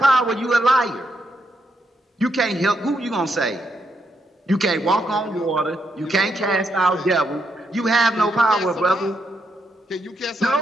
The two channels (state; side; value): normal; both; correlation 0.79